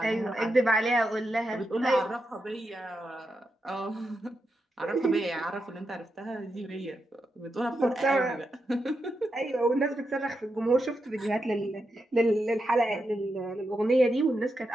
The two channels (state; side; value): normal; both; correlation 0.86